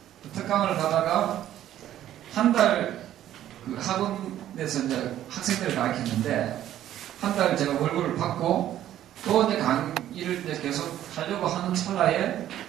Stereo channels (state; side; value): quieter; left; 12.2 dB